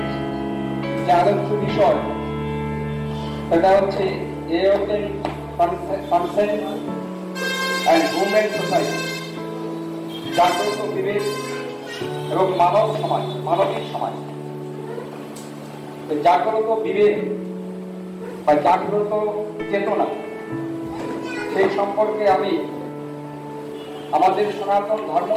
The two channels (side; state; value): both; identical; correlation 1.00